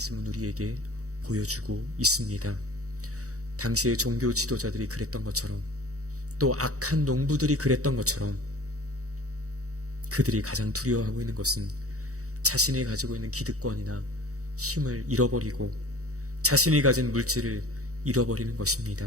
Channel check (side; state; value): left; late; 0.65 ms